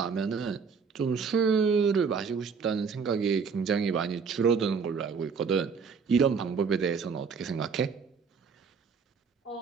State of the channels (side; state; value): left; quieter; 5.7 dB